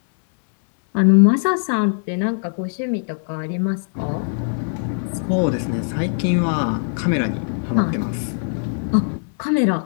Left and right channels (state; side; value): silent; right; 64 dB below the other